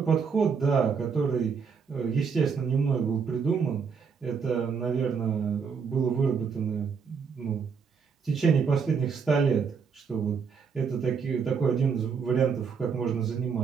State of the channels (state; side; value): quieter; left; 6.0 dB